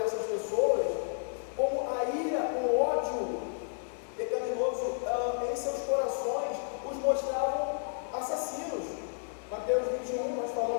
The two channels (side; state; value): right; silent; digital silence